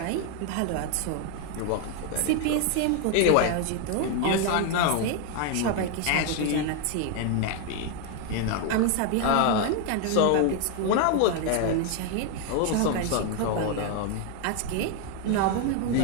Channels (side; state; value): both; different; correlation 0.00